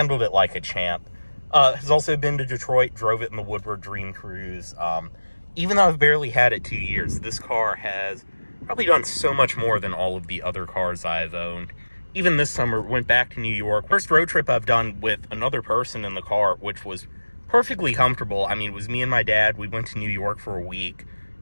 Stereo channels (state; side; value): inverted; both; correlation -1.00